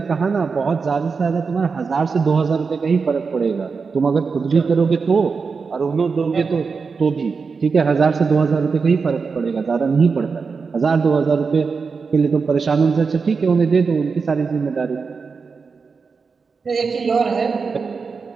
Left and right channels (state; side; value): quieter; left; 5.0 dB